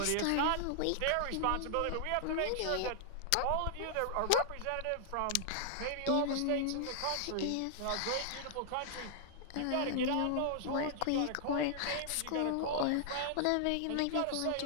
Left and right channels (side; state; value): both; different; correlation -0.01